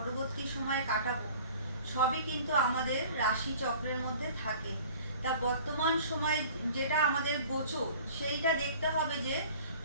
সময় কাটাবো, সবই কিন্তু আমাদের রাশি চক্রের মধ্যে থাকে। তা বর্তমান সময় যেটা আমাদের গোচর, সেইটা দেখতে হবে যে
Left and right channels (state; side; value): inverted; both; correlation -0.47